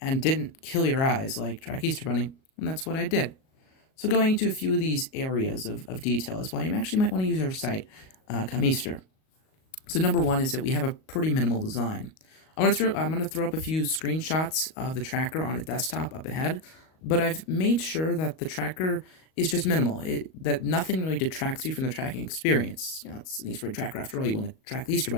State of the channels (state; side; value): late; right; 38 ms